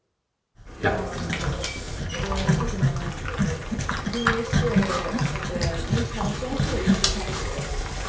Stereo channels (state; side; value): identical; both; correlation 1.00